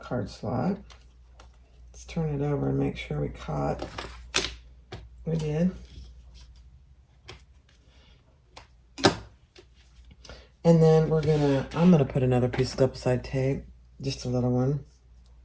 card slot. Let's turn it over and make sure we caught. We did. And then I'm gonna put another piece of double-sided tape, just a little one,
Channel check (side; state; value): both; identical; correlation 1.00